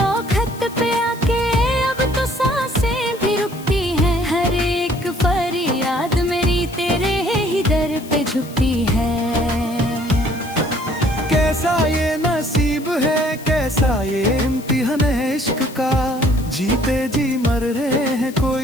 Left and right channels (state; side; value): noise; left; hiss, 19 dB below the sound